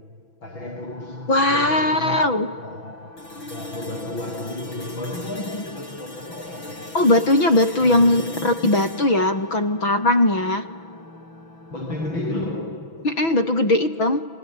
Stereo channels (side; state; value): right; late; 6.1 ms